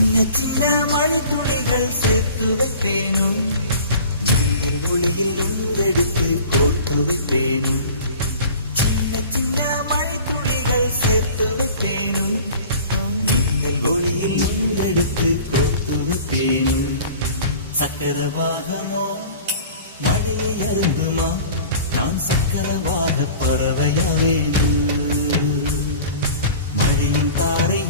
சின்ன மழை துளிகள் சேர்த்து வைப்பேனும், மின்னல் ஒளியில் உண்டெடுத்து கோர்த்து வைப்பேனும். சின்ன சின்ன மழை துளிகள் சேர்த்து வைப்பேனும், மின்னல் ஒளியில் உண்டெடுத்து கோர்த்து வைப்பேனும். சக்கரவாகமோ மழையை அருந்துமா, நான் சக்கரவாக பறவையாவேனும். மழையின்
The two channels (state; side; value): inverted; both; correlation -0.43